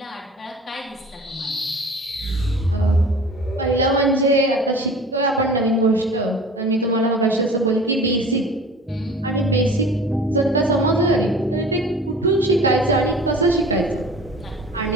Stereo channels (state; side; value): normal; both; correlation 0.42